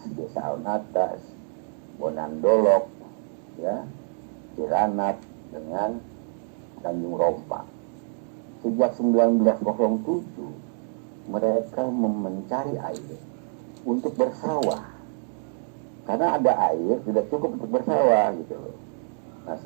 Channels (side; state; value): left; silent; 61 dB below the other